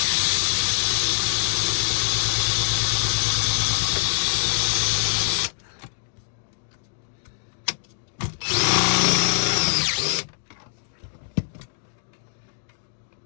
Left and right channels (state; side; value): silent; right; digital silence